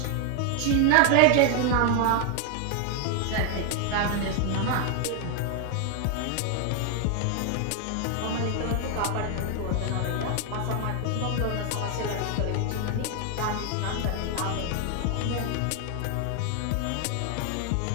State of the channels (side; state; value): both; different; correlation 0.00